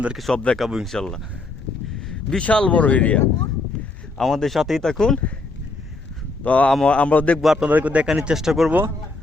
সব দেখাবো ইনশাল্লাহ। বিশাল বড় এরিয়া, আমাদের সাথেই থাকুন। তো আমরা দেখবো, আপনাদেরকে দেখানোর চেষ্টা করব।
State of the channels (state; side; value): quieter; right; 3.4 dB